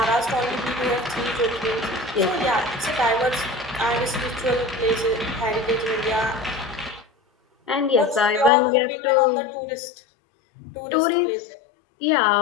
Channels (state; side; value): drops out; right; at 8.5 s